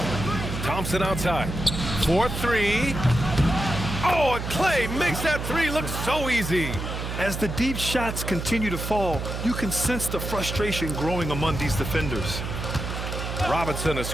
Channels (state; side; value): noise; right; hum, 5 dB below the sound